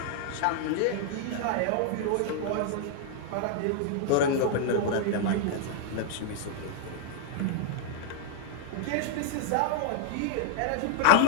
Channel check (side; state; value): both; different; correlation -0.01